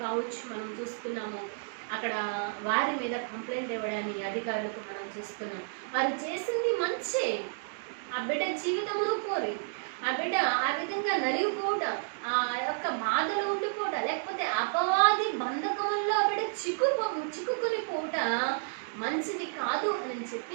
కావచ్చు మనం చూస్తున్నాము. అక్కడ వారి మీద కంప్లైంట్ ఇవ్వడాన్ని అధికారులకు మనం చూస్తున్నాం. వారు చేసింది మంచే, ఆ బిడ్డ జీవితమును కోరి ఆ బిడ్డ ఆ విధంగా నలిగిపోవడం, ఆ యొక్క బాధలో ఉండిపోవడం, లేకపోతే అపవాది బంధకముల్లో ఆ బిడ్డ చిక్కుకొని పోవట మంచిది కాదు అని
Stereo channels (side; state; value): left; silent; digital silence